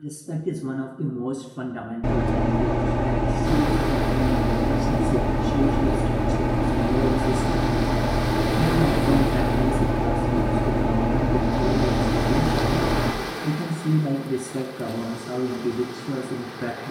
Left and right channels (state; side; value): identical; both; correlation 1.00